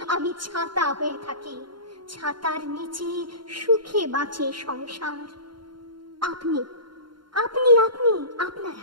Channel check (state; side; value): late; left; 0.72 ms